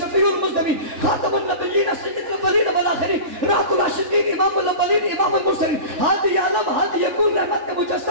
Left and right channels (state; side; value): late; left; 3.4 ms